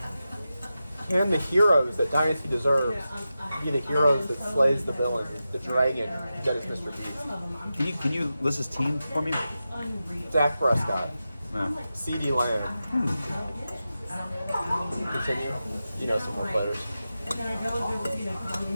Can the heroes that Dynasty deserves be the heroes that slays the villain, the dragon that is Mr. Beast? Can you list his team for me? Dak Prescott, Yeah. CeeDee Lamb. Continue. You know some more players.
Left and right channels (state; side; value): inverted; both; correlation -0.92